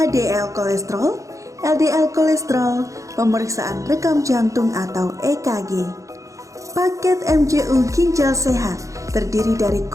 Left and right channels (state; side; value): late; left; 0.15 ms